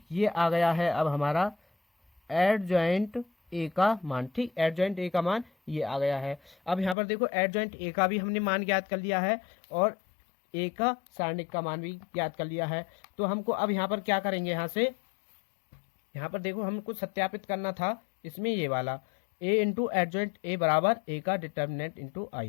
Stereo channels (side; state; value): right; drops out; at 7.0 s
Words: ये आ गया है अब हमारा एडजॉइंट ए का मान, ठीक। एडजॉइंट ए का मान ये आ गया है। अब यहाँ पर देखो एडजॉइंट ए का भी हमने मान ज्ञात कर लिया है और ए का सारणिक का मान भी ज्ञात कर लिया है। तो हमको अब यहाँ पर क्या करेंगे, यहाँ पर देखो हमको सत्यापित करना था इसमें ये वाला ए इंटू एडजॉइंट ए बराबर ए का डिटर्मिनेंट इंटू